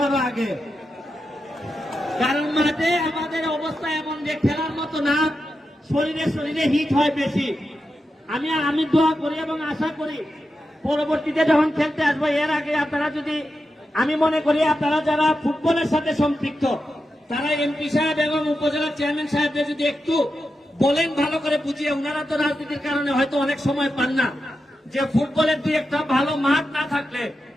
আরো আগে। কারণ মাঠে আমাদের অবস্থা এমন যে খেলার মতো না, শরীরে হিট হয় বেশি। আমি দোয়া করি এবং আশা করি পরবর্তীতে যখন খেলতে আসবো এর আগে আপনারা যদি, আমি মনে করি আপনারা যারা ফুটবলের সাথে সম্পৃক্ত তারা এমপি সাহেব এবং উপজেলা চেয়ারম্যান সাহেবদের যদি একটু বলেন ভালো করে বুঝিয়ে, ওনারা তো রাজনীতির কারণে হয়তো অনেক সময় পান না, যে ফুটবলের দুই একটা ভালো মাঠ না থাকলে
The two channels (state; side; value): normal; both; correlation 0.89